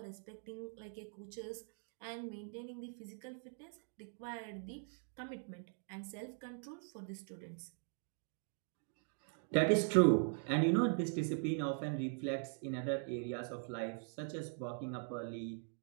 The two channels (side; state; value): left; silent; 50 dB below the other